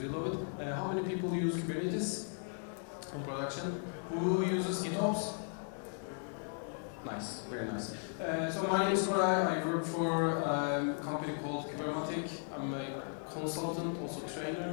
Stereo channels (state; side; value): silent; right; 54 dB below the other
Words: love it. How many people use Kubernetes on production? Who uses GitOps? Nice, very nice. So my name is Koray. I work for a company called Kubermatic. I'm a consultant, also